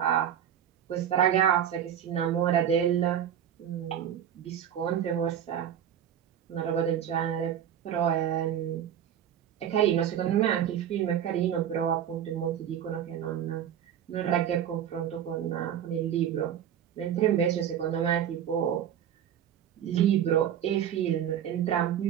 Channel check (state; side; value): quieter; left; 9.7 dB